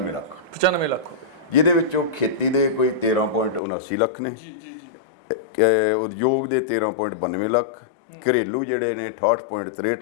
ਲੱਖ 95 ਲੱਖ ਜਿਹਦੇ ਵਿੱਚੋਂ ਖੇਤੀ ਦੇ ਕੋਈ 13.79 ਲੱਖ ਨੇ, ਜੀ ਜੀ ਜੀ ਉਦਯੋਗ ਦੇ 13.92 ਲੱਖ, ਘਰੇਲੂ ਜਿਹੜੇ ਨੇ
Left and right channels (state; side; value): drops out; right; at 3.6 s